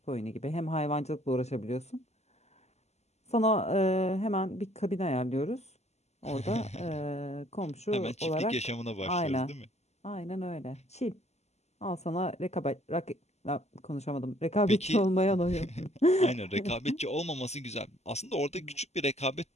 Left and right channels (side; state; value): right; late; 0.32 ms